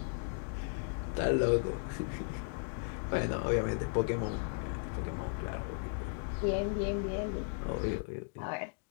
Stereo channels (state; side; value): silent; right; digital silence